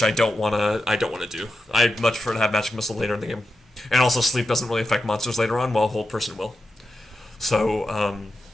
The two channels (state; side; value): normal; both; correlation 0.89